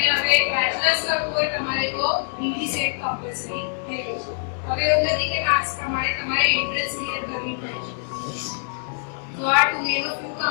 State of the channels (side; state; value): right; silent; 59 dB below the other